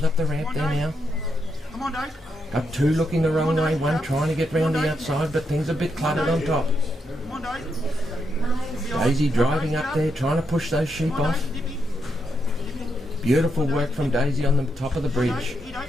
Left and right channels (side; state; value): both; normal; correlation 0.81